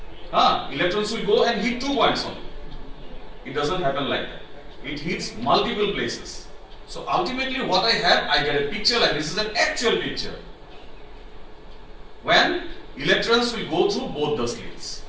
Electrons will go and hit 2 points only. It doesn't happen like that. It hits multiple places. So ultimately what I have, I get a picture like this is an actual picture. When electrons will go through both the slits.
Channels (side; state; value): both; identical; correlation 1.00